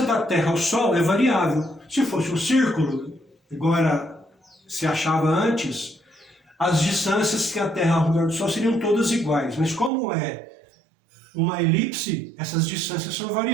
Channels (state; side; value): drops out; left; at 9.9 s